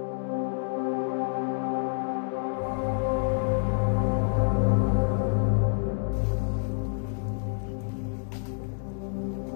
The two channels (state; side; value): silent; right; digital silence